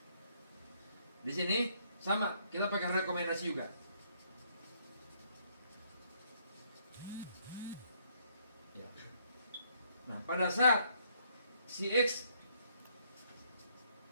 Di sini sama, kita pakai rekomendasi juga. Ya. Nah pada saat si X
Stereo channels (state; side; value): inverted; both; correlation -0.68